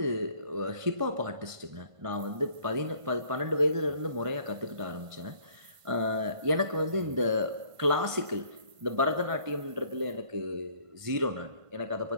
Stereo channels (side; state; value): left; late; 1.5 ms